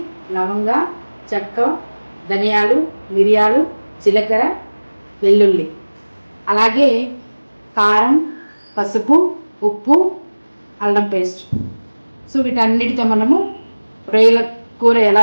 లవంగ, చెక్క, ధనియాలు, మిరియాలు, జీలకర్ర, వెల్లుల్లి, అలాగే కారం, పసుపు, ఉప్పు, అల్లం పేస్ట్. సో వీటన్నిటితో మనము రొయ్యల కూర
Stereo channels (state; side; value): inverted; both; correlation -1.00